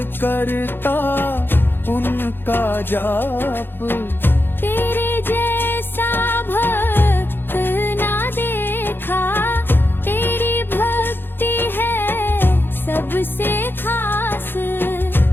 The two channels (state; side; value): late; right; 0.10 ms